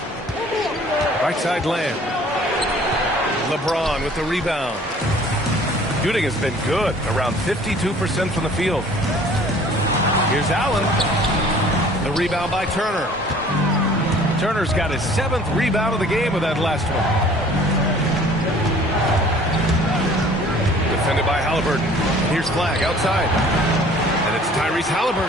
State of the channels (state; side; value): normal; both; correlation 0.52